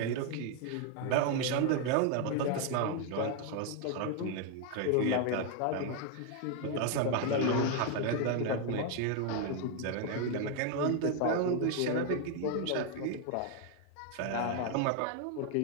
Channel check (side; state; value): both; different; correlation 0.01